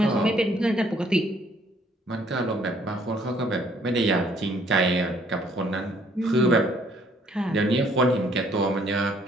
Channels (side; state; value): both; normal; correlation 0.63